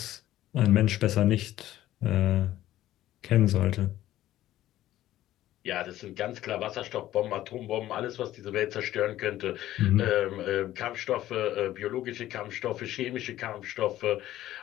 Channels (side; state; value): right; quieter; 14.0 dB